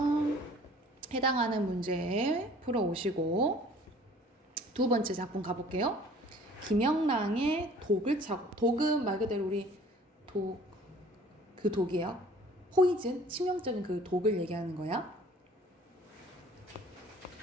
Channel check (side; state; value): both; normal; correlation 0.51